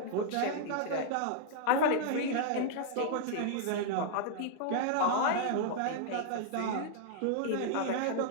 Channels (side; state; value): both; different; correlation -0.01